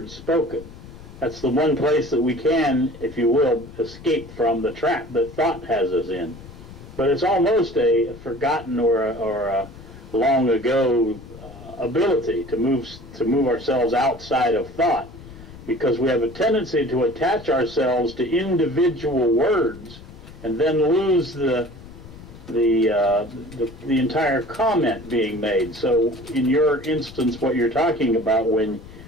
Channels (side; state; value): left; noise; rumble, 17 dB below the sound